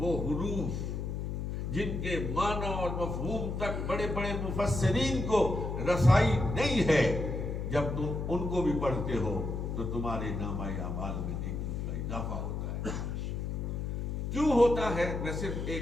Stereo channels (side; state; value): left; noise; hum, 3 dB below the sound